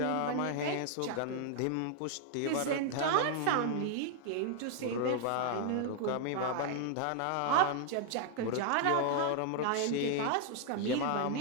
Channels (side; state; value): both; different; correlation 0.00